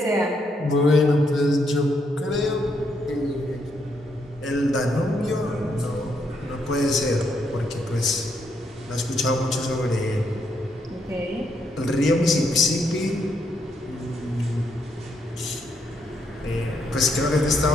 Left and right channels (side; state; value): both; normal; correlation 0.76